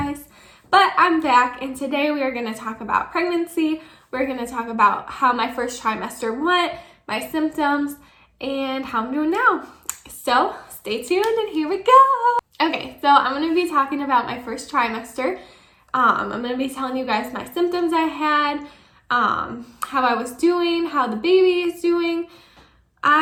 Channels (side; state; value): both; identical; correlation 1.00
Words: but I'm back and today we are going to talk about pregnancy. We're going to talk about how my first trimester went, my symptoms, and how I'm doing now. So stay tuned and here we go. Okay, so I'm going to be talking about my first trimester. I'm going to be telling you guys my symptoms I had, how I was doing, how the baby is doing.